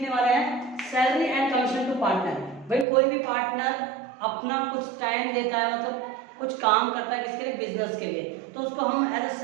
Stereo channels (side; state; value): left; drops out; at 2.9 s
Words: वाले हैं salary and commission to partner. भाई कोई भी पार्टनर अपना कुछ टाइम देता है, मतलब कुछ काम करता है किसके लिए, बिजनेस के लिए, तो उसको हम एज अ